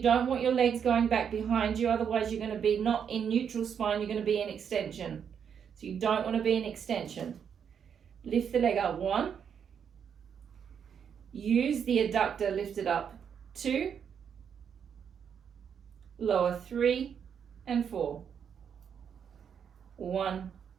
don't want your legs going back behind you, otherwise you're going to be not in neutral spine, you're going to be in extension. So you don't want to be in extension. Lift the leg up. 1. Use the adductor, lift it up. 2. Lower 3 and 4. 1,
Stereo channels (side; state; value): left; quieter; 7.6 dB